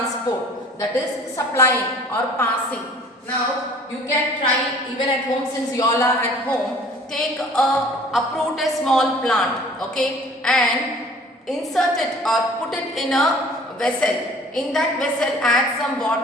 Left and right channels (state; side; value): normal; both; correlation 0.51